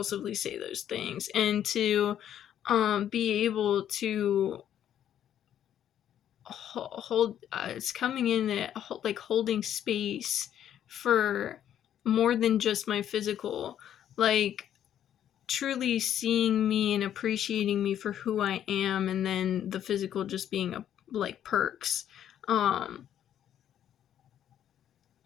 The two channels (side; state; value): right; quieter; 10.3 dB